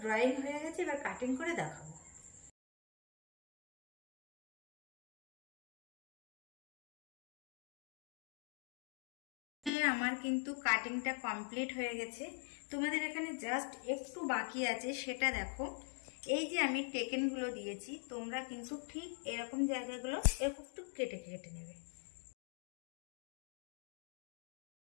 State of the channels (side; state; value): right; drops out; at 9.7 s